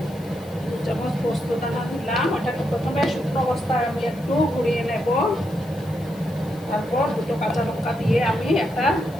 2 চামচ পোস্ত দানা দিলাম। ওটাকে প্রথমে শুকনো অবস্থায় আমি একটু ঘুরিয়ে নেব। তারপর 2টো কাঁচা লঙ্কা দিয়ে আমি একটা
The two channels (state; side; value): noise; left; hiss, 24 dB below the sound